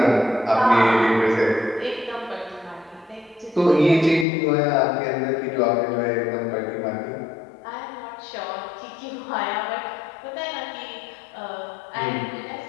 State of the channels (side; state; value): right; drops out; at 4.2 s